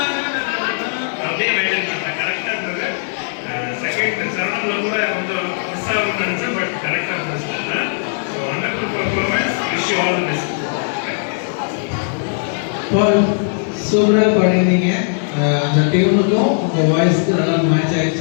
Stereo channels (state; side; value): silent; right; digital silence